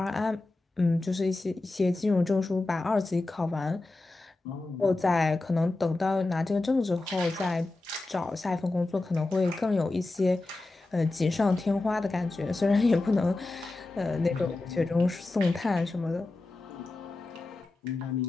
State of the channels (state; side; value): quieter; right; 3.0 dB